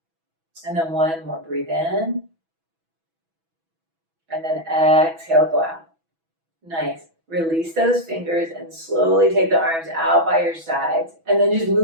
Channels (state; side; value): late; left; 6.1 ms